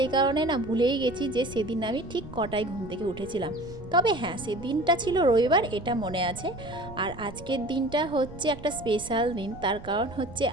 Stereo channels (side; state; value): right; noise; rumble, 16 dB below the sound